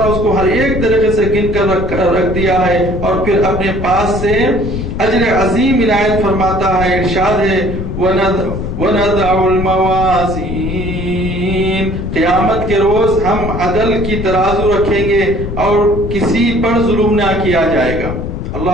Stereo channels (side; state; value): left; noise; rumble, 5 dB below the sound